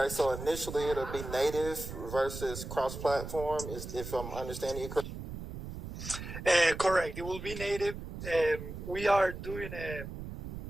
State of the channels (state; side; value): noise; right; rumble, 9 dB below the sound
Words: so initially it'll be native versus cross-platform, if I'm understanding you correctly? Correct. It will be native. We're